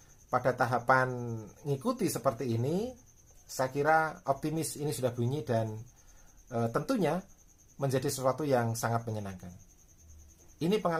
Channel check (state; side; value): identical; both; correlation 1.00